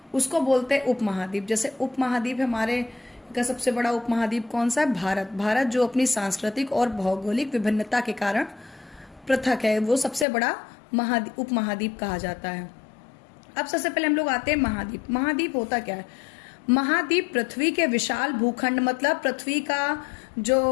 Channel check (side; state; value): right; drops out; at 10.2 s